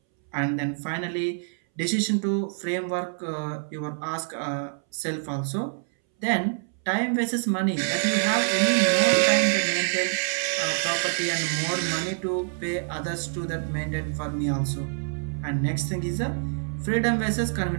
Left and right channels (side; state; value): left; silent; 61 dB below the other